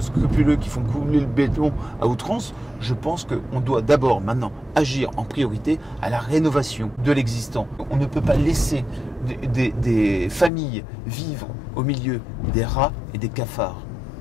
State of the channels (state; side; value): drops out; right; at 10.5 s